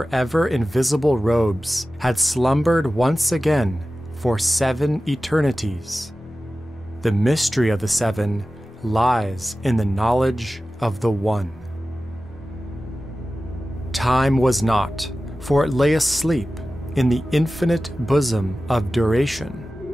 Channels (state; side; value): normal; both; correlation 0.95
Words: ever-invisible robes, had slumbered once again for 7 eternities. The mystery of the 7 lies in the knowledge of the One. Time was not, for it lay asleep in the infinite bosom of duration.